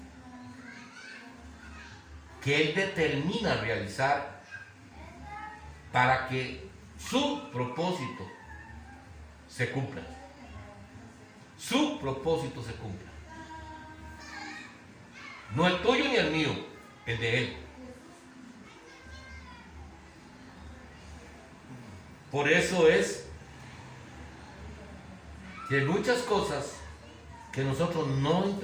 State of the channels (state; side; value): identical; both; correlation 1.00